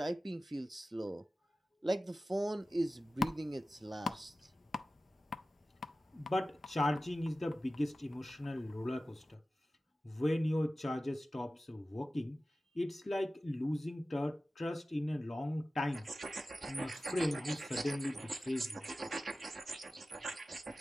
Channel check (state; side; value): normal; both; correlation 0.95